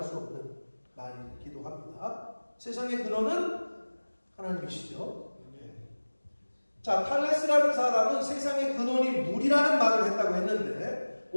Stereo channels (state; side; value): inverted; both; correlation -1.00